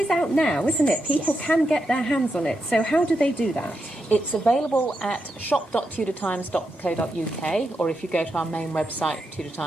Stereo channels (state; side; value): normal; both; correlation 0.85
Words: out now, isn't it? People can get their hands on it. So how do they do that? It's available at shop.tudortimes.co.uk, or if you go to our main website, Tudor